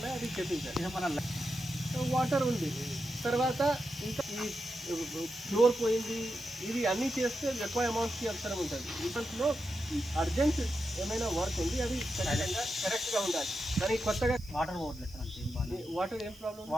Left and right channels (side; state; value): right; noise; hiss, 23 dB below the sound